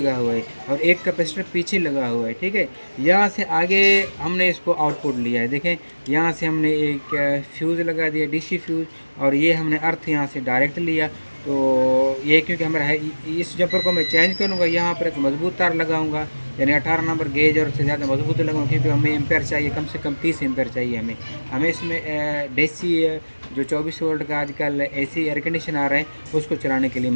हुआ है, और एक कैपेसिटर पीछे लगा हुआ है, ठीक है। यहाँ से आगे हमने इसको आउटपुट लिया है, देखें यहाँ से हमने एक फ्यूज़ लगा दिया, DC फ्यूज़, और ये हमने अर्थ यहाँ से डायरेक्ट लिया। तो ये क्योंकि हमारा है, इस जंपर को मैं चेंज करूँगा, यहाँ पर एक मजबूत तार लगाऊंगा, यानी 18 नंबर गेज और उससे ज़्यादा मजबूत लगाऊंगा, क्योंकि हमें एम्पेयर चाहिए, कम से कम 30 एम्पेयर चाहिए हमें इसमें DC जो 24 वोल्ट का आजकल AC एयर कंडीशन आ रहा है उसको चलाने के लिए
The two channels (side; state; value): both; inverted; correlation -1.00